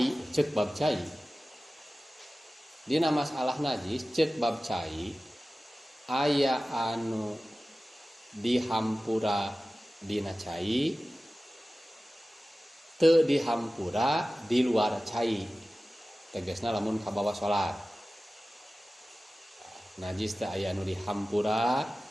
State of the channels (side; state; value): both; normal; correlation 0.96